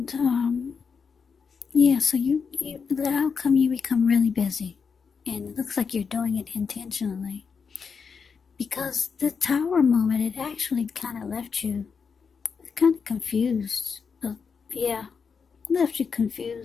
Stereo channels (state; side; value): quieter; right; 5.8 dB